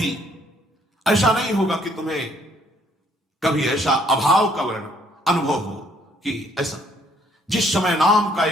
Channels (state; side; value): normal; both; correlation 0.65